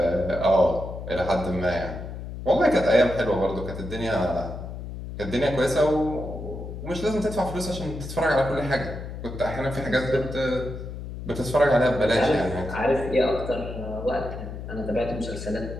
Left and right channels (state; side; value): noise; left; hum, 9 dB below the sound